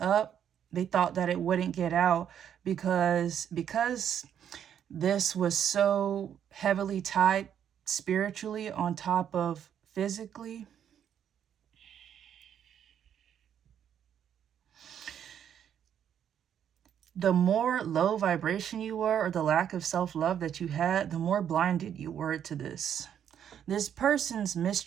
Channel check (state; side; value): quieter; left; 9.2 dB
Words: They thought that it wouldn't get out because this was so heavily tied spiritually on top of physically. The more low vibration you were, or the lack of self-love that you had, the more blinded you were to this. This person's